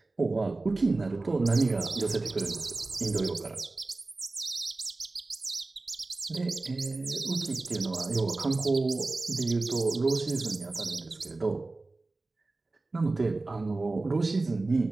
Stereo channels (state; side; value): quieter; left; 3.3 dB